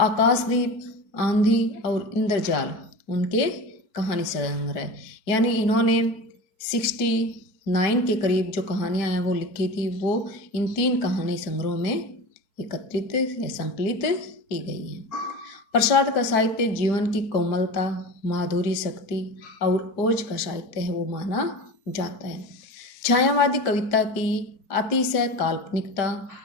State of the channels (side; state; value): right; late; 4.6 ms